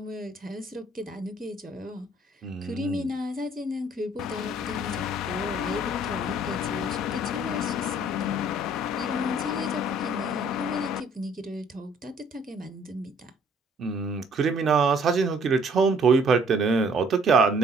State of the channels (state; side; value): normal; both; correlation 0.59